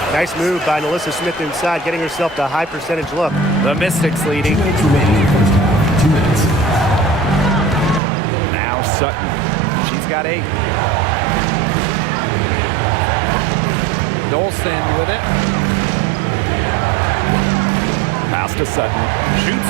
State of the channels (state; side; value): drops out; left; at 8.0 s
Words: Nice move by Melissa Smith inside, getting herself to a high percentage look. The Mystics leading. 2 minutes remaining first half. 2 minutes. Now Sutton. She's got 8. Dolson with it. Pass to Sutton.